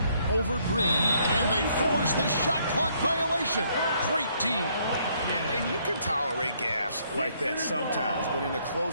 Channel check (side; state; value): both; inverted; correlation -0.68